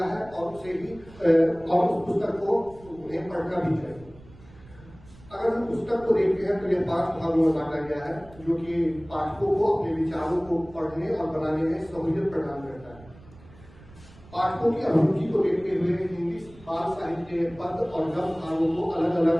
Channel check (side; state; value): right; noise; rumble, 22 dB below the sound